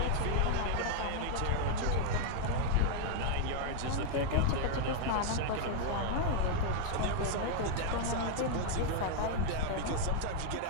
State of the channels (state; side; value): different; both; correlation 0.00